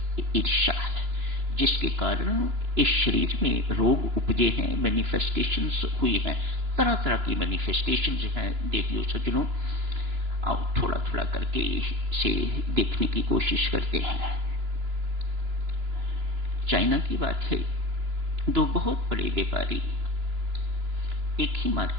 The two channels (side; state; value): left; late; 2.9 ms